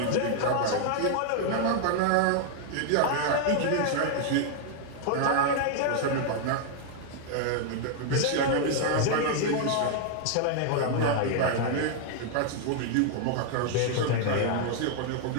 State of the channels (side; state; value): both; different; correlation 0.00